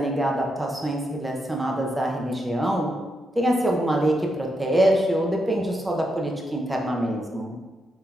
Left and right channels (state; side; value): normal; both; correlation 0.82